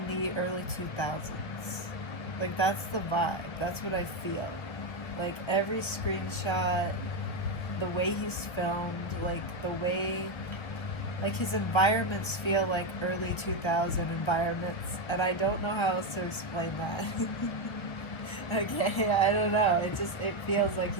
the early 2000s. Like, that's the vibe. That's what I feel. Like, every screenshot, the way he's filmed, like, the way, like, his environments feel like early 2000 environments. And I don't know how else to explain that. Okay, I don't know. It feels like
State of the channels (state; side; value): late; right; 1.4 ms